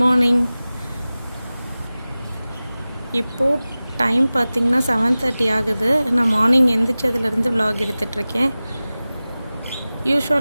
morning. இப்போது time பார்த்திங்கன்னா 7:30 ஆகுது. நான் மார்னிங் எந்திரிச்சதுலேருந்து விலாக் எடுத்துகிட்ருக்கேன்.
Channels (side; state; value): both; inverted; correlation -0.97